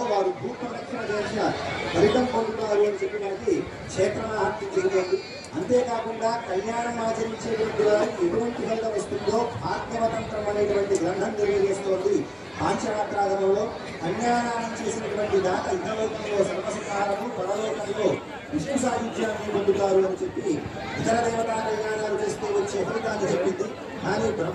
వారు భూ ప్రదక్షిణ చేసిన ఫలితం పొందుతారు అని చెప్పి మనకి క్షేత్రమహత్యం చెబుతుంది. అంతేకాకుండా కళ్యాణం ఆచరించేటువంటి వారికి ఎటువంటి ఫలితం వస్తుందో భాగ్యవతంత్రం అనేటువంటి గ్రంథం తెలియజేస్తోంది. పాంచరాత్రాగమంలో కళ్యాణాన్ని చేసినటువంటి దాత ఇహలోకంలో సర్వసంహారము, పరలోకంలో విష్ణు సాహిత్యాన్ని పొందుతారు అని చెప్పి ఇతర దేవతా కళ్యాణాలు చేస్తూ వచ్చే ఫలితాన్ని చెప్పింది. కానీ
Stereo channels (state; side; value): identical; both; correlation 1.00